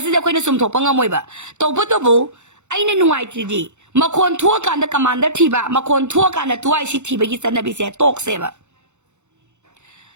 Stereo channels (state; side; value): late; left; 0.83 ms